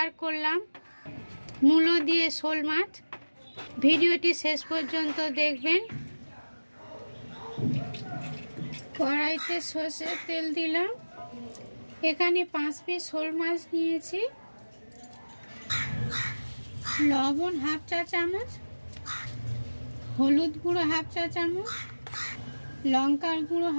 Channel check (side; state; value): both; inverted; correlation -1.00